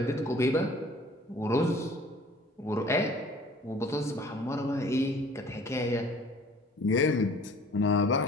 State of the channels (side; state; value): both; normal; correlation 0.51